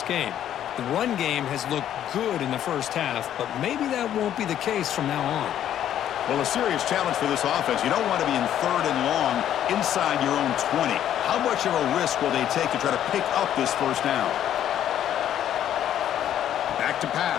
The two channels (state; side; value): quieter; right; 10.8 dB